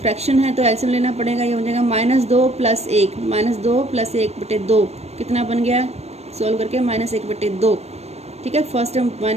है तो एलसीएम लेना पड़ेगा। ये हो जाएगा -2 + 1, -2 + 1/2, कितना बन गया, सोल्व करके -1/2, ठीक है। फर्स्ट टर्म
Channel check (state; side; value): late; left; 0.31 ms